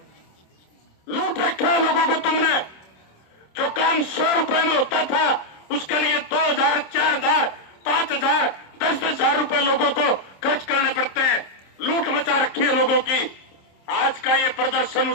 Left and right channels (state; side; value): late; right; 26 ms